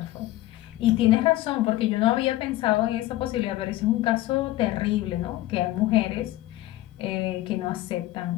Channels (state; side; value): quieter; right; 16.2 dB